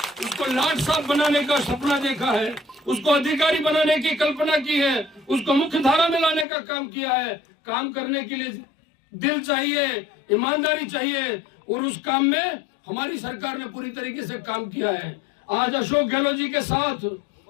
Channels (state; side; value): drops out; right; at 6.5 s